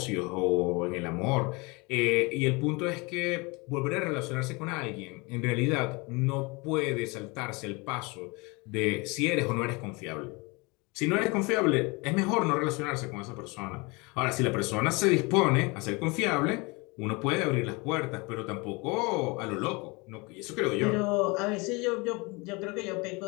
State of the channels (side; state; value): right; quieter; 27.0 dB